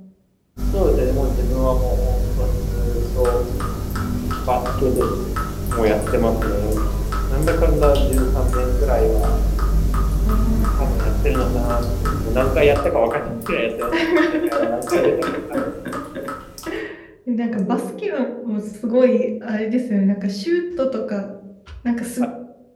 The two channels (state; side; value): identical; both; correlation 1.00